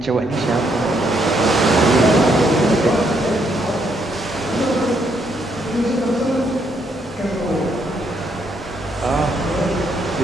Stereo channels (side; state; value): both; normal; correlation 0.74